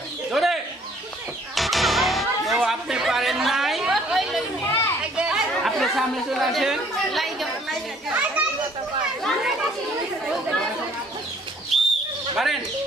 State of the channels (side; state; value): both; normal; correlation 0.59